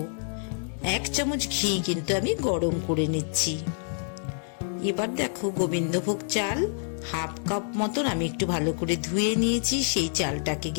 1 চামচ ঘি কিন্তু আমি গরম করে নিচ্ছি। এবার দেখো, গোবিন্দভোগ চাল 1/2 কাপ মতন আমি একটু ভালো করে ধুয়ে নিয়েছি। সেই চালটাকে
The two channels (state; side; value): silent; right; digital silence